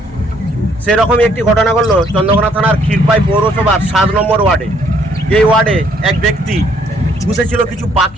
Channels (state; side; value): normal; both; correlation 0.66